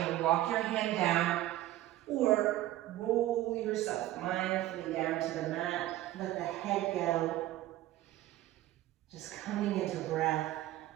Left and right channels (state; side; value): quieter; left; 14.9 dB